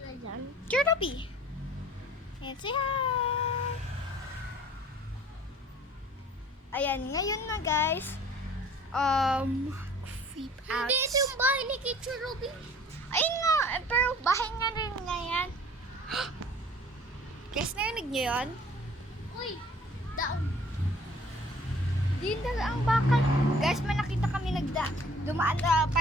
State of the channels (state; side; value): normal; both; correlation 0.51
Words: dyan? Kirby. And say hi! Ayan, ngayon na guys. Creep out. Hindi, ito yung bahay ni Teacher Ruby. Ayun nga, pero bahay nga rin nga yan. Guys, narinig niyo yun? Uy, daon. Di na ang bakal. Guys, may nakita kami dumaan na